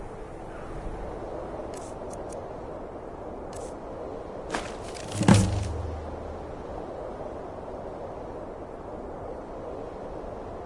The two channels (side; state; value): both; identical; correlation 1.00